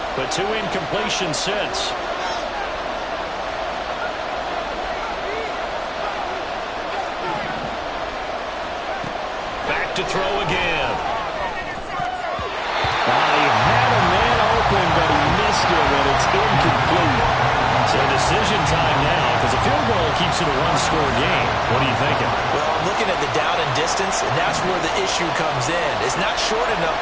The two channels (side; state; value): both; identical; correlation 1.00